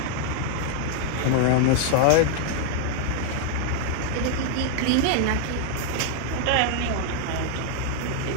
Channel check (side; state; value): both; different; correlation 0.00